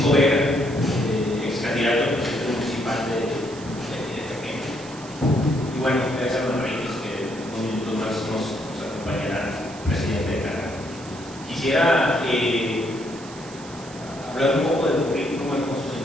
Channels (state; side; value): noise; right; hiss, 18 dB below the sound